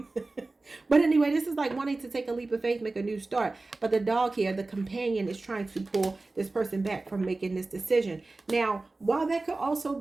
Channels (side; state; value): left; quieter; 3.3 dB